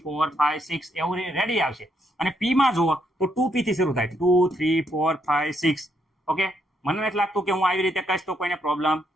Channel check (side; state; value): both; normal; correlation 0.76